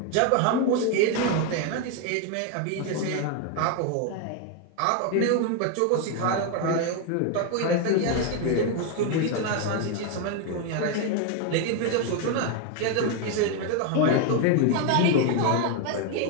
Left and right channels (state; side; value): different; both; correlation 0.01